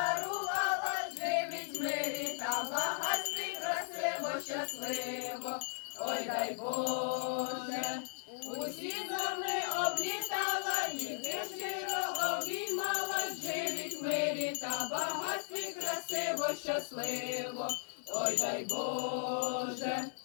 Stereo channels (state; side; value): silent; right; 53 dB below the other